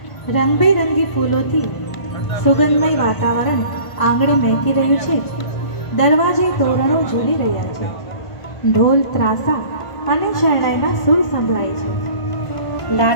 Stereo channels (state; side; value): late; right; 1.5 ms